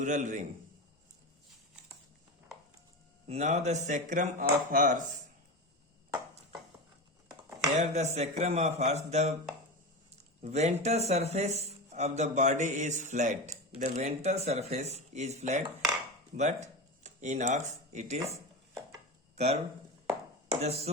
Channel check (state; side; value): normal; both; correlation 0.22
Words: ring. Now the sacrum of horse. Here the sacrum of horse, the ventral surface of the body is flat. The ventral surface is flat, but in ox it is curved. The